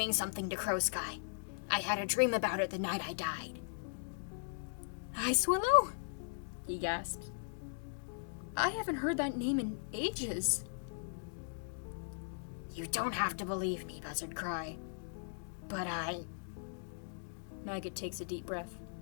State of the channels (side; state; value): right; silent; digital silence